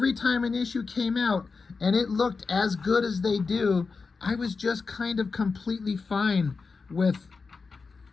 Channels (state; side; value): quieter; right; 4.6 dB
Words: time an issue came out and it looked as good as they do, I was just kind of completely fine with